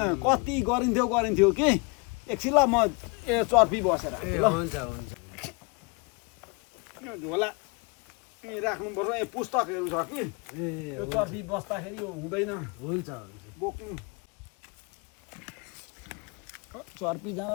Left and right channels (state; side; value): quieter; right; 30.0 dB